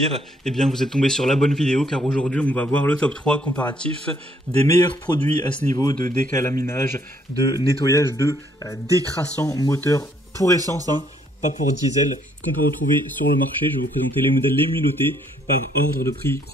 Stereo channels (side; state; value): both; normal; correlation 0.67